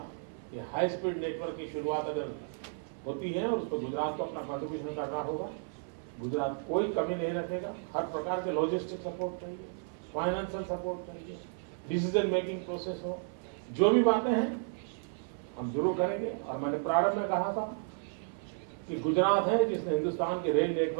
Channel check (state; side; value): silent; left; 56 dB below the other